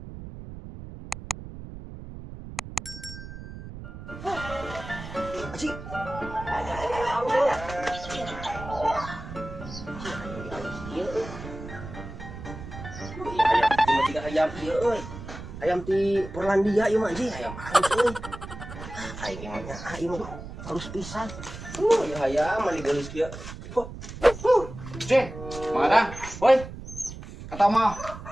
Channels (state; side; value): noise; right; rumble, 12 dB below the sound